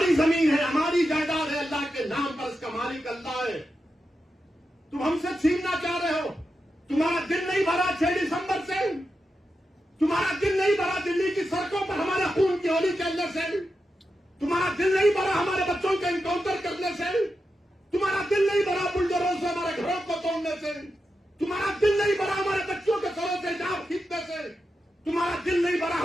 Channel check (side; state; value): both; normal; correlation 0.89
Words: जमीन है, हमारी जायदाद है, अल्लाह के नाम पर इसका मालिक अल्लाह है। तुम हमसे छीनना चाह रहे हो। तुम्हारा दिल नहीं भरा 6 दिसंबर से? तुम्हारा दिल नहीं भरा दिल्ली की सड़कों पर हमारे खून की होली खेलने से? तुम्हारा दिल नहीं भरा हमारे बच्चों के एनकाउंटर करने से? तुम्हारा दिल नहीं भरा बुलडोजरों से हमारे घरों को तोड़ने से? तुम्हारा दिल नहीं भरा हमारे बच्चों के सरों से जान खींचने से? तुम्हारा दिल नहीं भरा